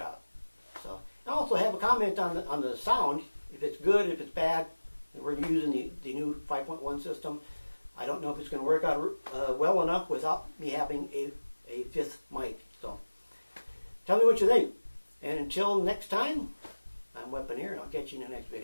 So, I also have a comment on the sound, if it's good, if it's bad. We're using the new 5.1 system. I don't know if it's going to work out well enough without me having a fifth mic. So, tell me what you think. And until next time, I'm Weaponeer, and I'll catch you in the next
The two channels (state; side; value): inverted; both; correlation -1.00